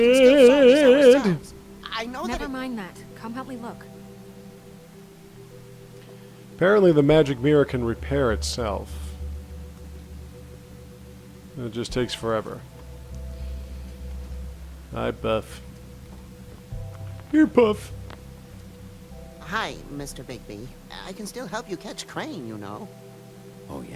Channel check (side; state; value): both; identical; correlation 1.00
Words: solve this shit. ourselves. I know that Never it... mind that. Come help me look. Apparently the magic mirror can repair itself. It just takes forever. Hi, Buff. Here, Puff. Hi, Mr. Bigby. I can still help you catch Crane, you know. Oh,